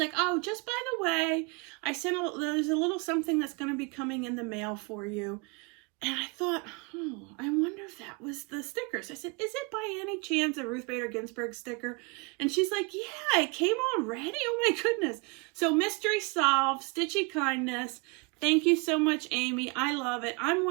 oh, just by the way, there's a little something that's going to be coming in the mail for you. And I thought, oh, I wonder if that was the stickers. I said, is it by any chance a Ruth Bader Ginsburg sticker? And she's like, yeah, it came already? Oh my goodness. So mystery solved, Stitchy Kindness. Thank you so much, Amy. I love it. I'm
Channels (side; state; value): left; quieter; 30.1 dB